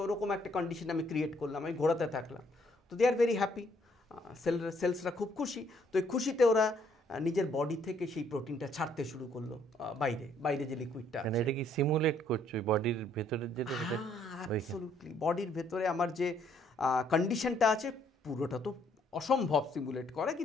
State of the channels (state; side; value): normal; both; correlation 0.67